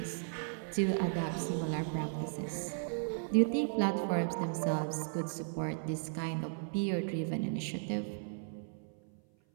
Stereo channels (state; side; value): silent; left; 54 dB below the other